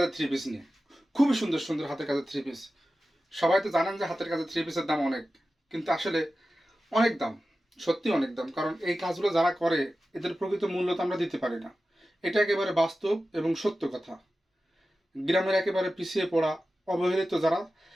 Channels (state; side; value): normal; both; correlation 0.94